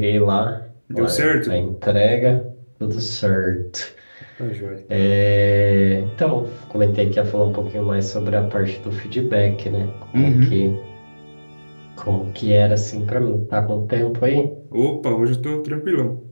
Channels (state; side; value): inverted; both; correlation -1.00